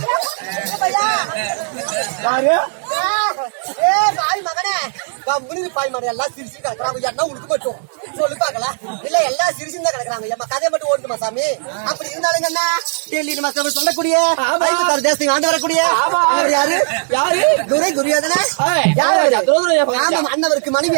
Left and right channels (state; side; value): silent; left; 68 dB below the other